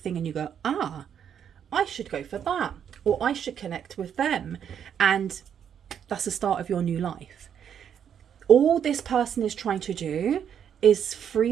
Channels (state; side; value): quieter; left; 8.6 dB